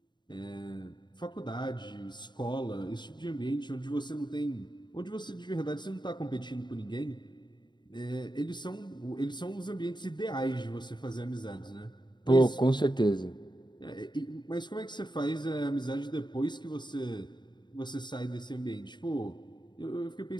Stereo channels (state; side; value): late; right; 0.22 ms